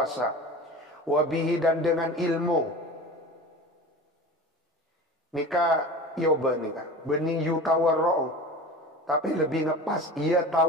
Wabihi, dan dengan ilmu nikah yoba nikah benih yu tawarra'u, tapi lebih ngepas ya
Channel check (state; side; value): normal; both; correlation 0.35